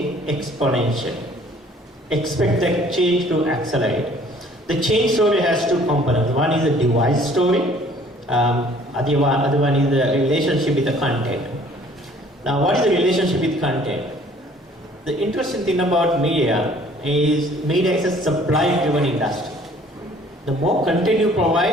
exponentially. Expect the change to accelerate. The change story has two components. One is the device story, other one is the relationship with the content. Now, what is the relationship with content? The interesting thing about media is a supply-driven industry. The more content you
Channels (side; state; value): both; normal; correlation 0.55